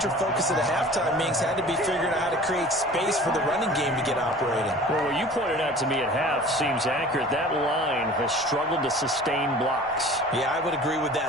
focus of the halftime meetings had to be figuring out how to create space for the running game to get operating. Well, what you pointed out to me at half seems accurate. That line has struggled to sustain blocks. Yeah, I would agree with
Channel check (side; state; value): both; normal; correlation 0.44